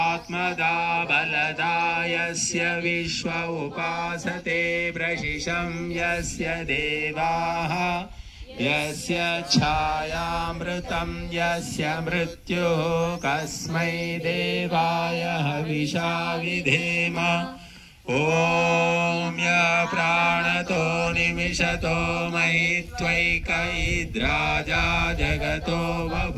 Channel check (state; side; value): identical; both; correlation 1.00